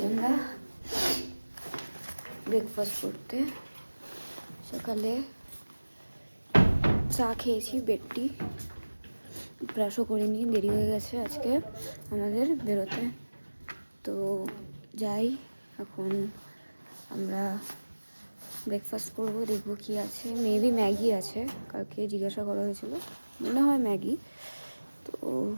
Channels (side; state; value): both; inverted; correlation -1.00